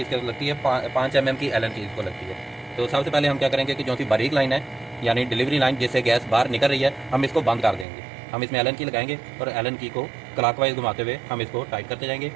इसके लगती है 5 mm की एलन की इसको लगती है। तो सबसे पहले हम क्या करेंगे कि जो सी बारीक लाइन है यानी डिलीवरी लाइन जिससे गैस बाहर निकल रही है, हम इसको बंद कर देंगे। हम इसमें एलन की लगाएंगे और एलन की को क्लॉकवाइज घुमाते हुए हम इसको टाइट करते जाएंगे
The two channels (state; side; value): drops out; left; at 7.9 s